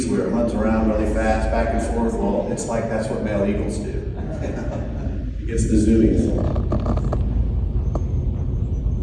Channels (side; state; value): both; identical; correlation 1.00